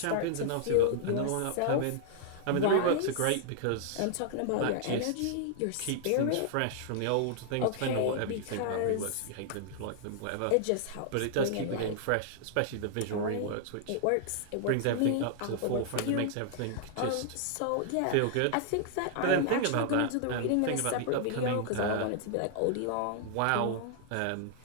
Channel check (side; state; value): both; different; correlation -0.01